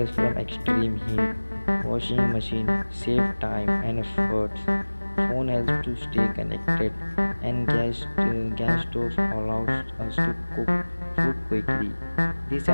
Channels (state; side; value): inverted; both; correlation -1.00